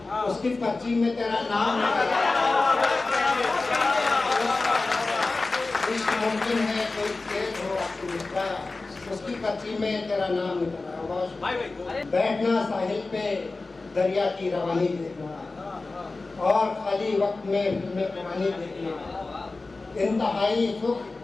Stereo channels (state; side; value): quieter; right; 3.5 dB